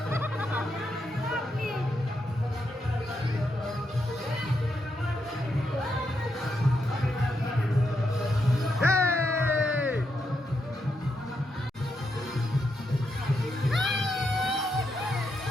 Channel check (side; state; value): both; normal; correlation 0.82